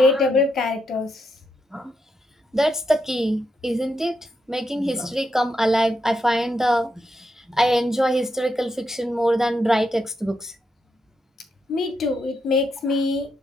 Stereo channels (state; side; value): normal; both; correlation 0.82